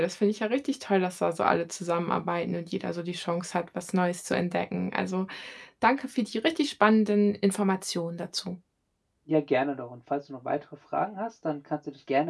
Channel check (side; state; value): both; identical; correlation 1.00